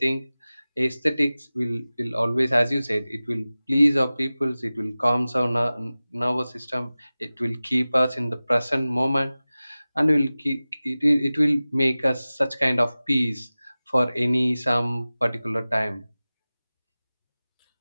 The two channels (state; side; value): inverted; both; correlation -0.97